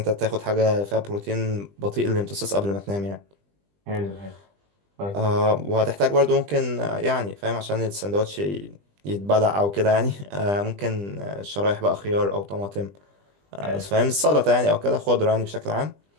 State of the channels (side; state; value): left; late; 20 ms